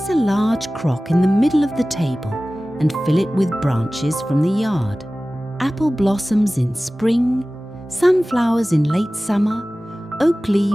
a large crock in the middle of the table and fill it with branches from the yard. Apple blossoms in spring, sunflowers in late summer, oak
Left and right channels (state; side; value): normal; both; correlation 0.97